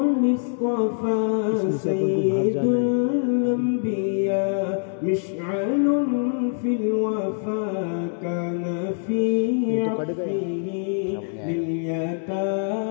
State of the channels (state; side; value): silent; right; digital silence